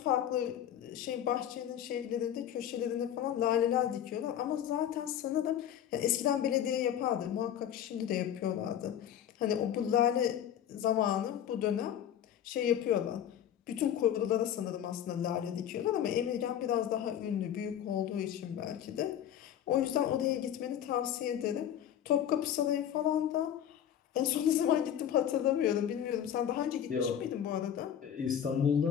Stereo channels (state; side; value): quieter; right; 10.0 dB